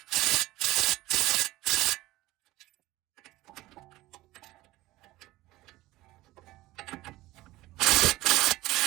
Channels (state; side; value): quieter; left; 18.1 dB